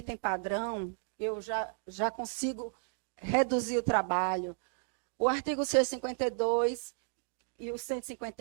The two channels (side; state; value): left; silent; 55 dB below the other